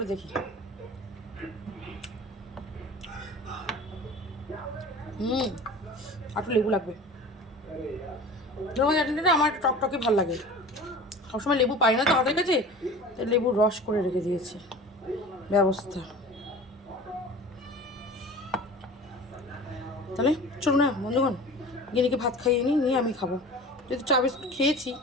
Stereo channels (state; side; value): normal; both; correlation 0.39